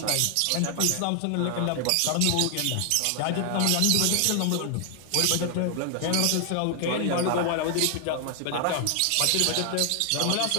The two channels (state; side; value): different; both; correlation 0.00